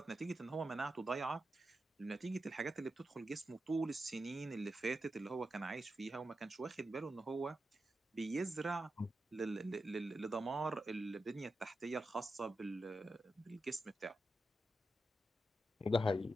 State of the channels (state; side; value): normal; both; correlation 0.89